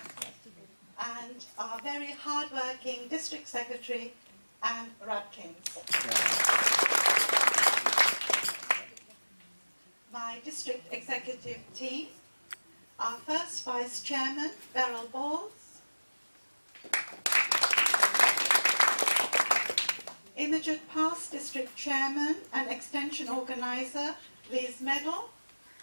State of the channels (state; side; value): inverted; both; correlation -1.00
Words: and our very hard-working District Secretary, Anne Rudkins. My District Executive team, our first Vice Chairman, Beryl Balls, immediate past District Chairman and Extension Organiser, Liz Medal.